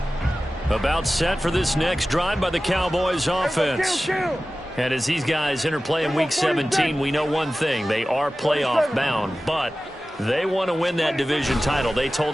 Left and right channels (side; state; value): both; normal; correlation 0.96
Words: About set for this next drive by the Cowboys offense. And as these guys interplay in Week 17, we know one thing. They are playoff bound, but they want to win that division title. They